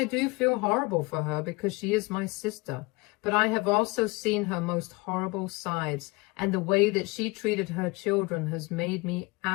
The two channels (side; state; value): right; quieter; 25.4 dB